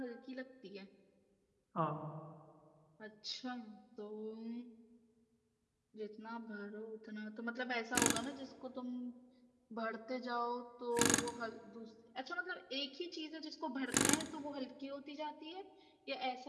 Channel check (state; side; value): identical; both; correlation 1.00